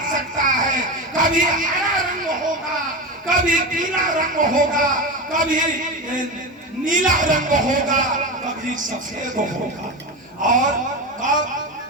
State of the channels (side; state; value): both; normal; correlation 0.20